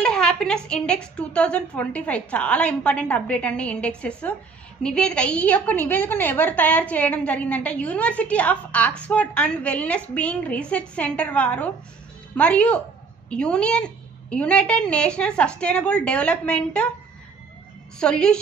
హ్యాపీనెస్ ఇండెక్స్ 2025. చాలా ఇంపార్టెంట్ అప్డేట్ అండి. ఇండెక్సెస్ నివేదిక. ఈ యొక్క నివేదికను ఎవరు తయారు చేయడం జరిగిందంటే university of Oxford and wellness being research centre వారు మరియు united national sustainable development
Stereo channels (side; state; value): left; quieter; 4.9 dB